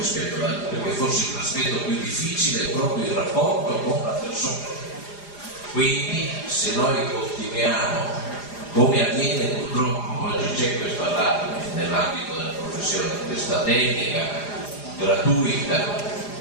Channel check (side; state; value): right; late; 4.9 ms